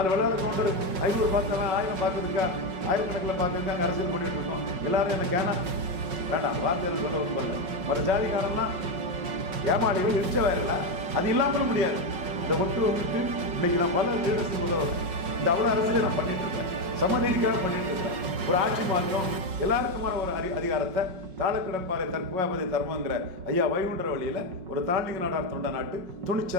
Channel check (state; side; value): late; left; 5.4 ms